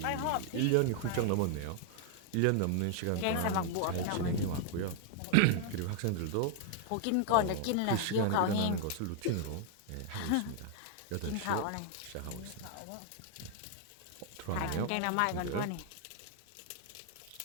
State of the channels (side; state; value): both; different; correlation 0.00